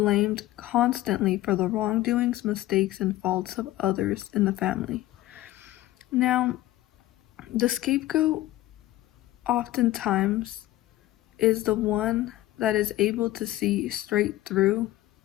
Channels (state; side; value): quieter; right; 15.7 dB